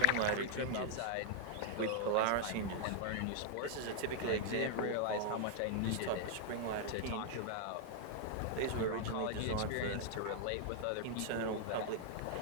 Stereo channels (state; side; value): different; both; correlation -0.01